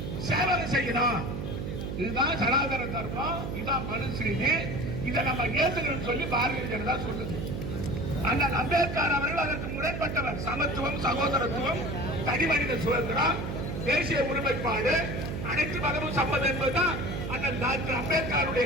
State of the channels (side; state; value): right; noise; hum, 5 dB below the sound